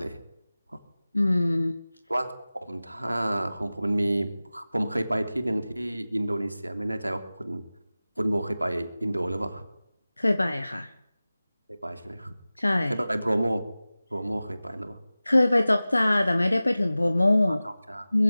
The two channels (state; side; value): inverted; both; correlation -0.97